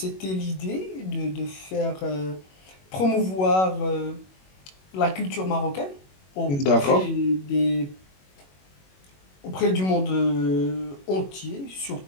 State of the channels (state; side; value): late; right; 21 ms